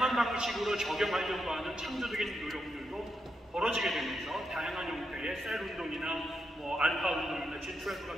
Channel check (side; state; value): both; normal; correlation 0.83